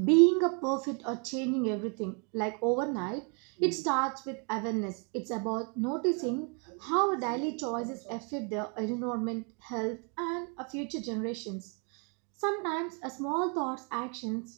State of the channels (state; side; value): quieter; left; 36.6 dB